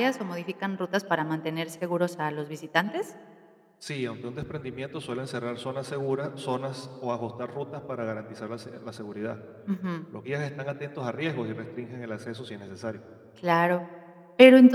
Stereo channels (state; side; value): identical; both; correlation 1.00